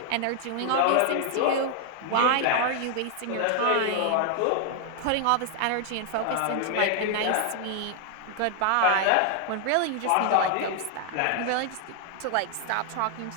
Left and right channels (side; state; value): both; different; correlation 0.00